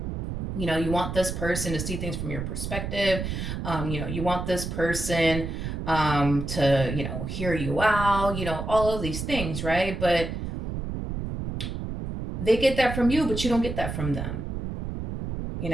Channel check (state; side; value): noise; right; rumble, 5 dB below the sound